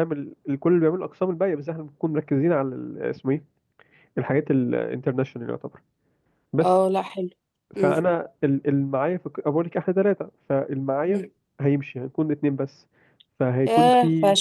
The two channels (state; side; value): identical; both; correlation 1.00